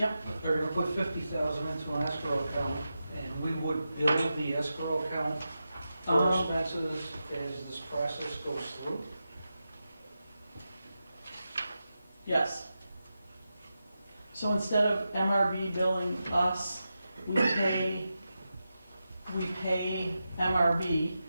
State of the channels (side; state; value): both; inverted; correlation -0.90